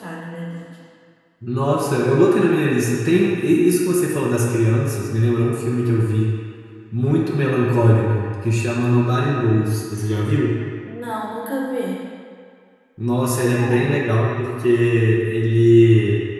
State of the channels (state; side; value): identical; both; correlation 1.00